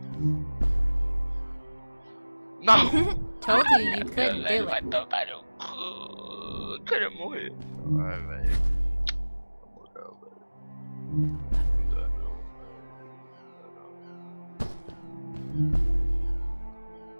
Não! Told you you couldn't do Vai it. tomar no cu. Eu queria morrer. Vai, velho. Na moral, velho. Não dá não, velho.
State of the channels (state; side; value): inverted; both; correlation -1.00